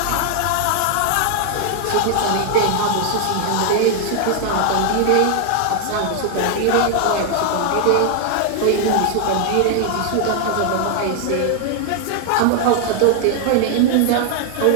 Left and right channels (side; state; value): both; different; correlation 0.00